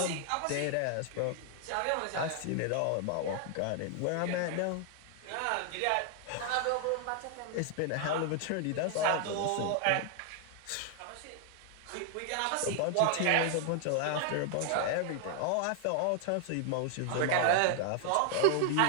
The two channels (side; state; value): both; different; correlation 0.00